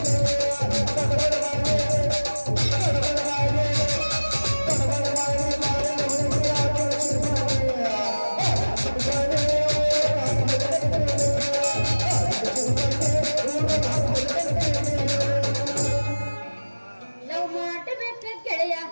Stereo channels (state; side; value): inverted; both; correlation -1.00